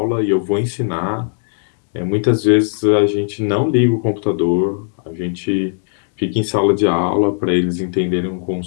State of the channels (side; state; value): right; silent; digital silence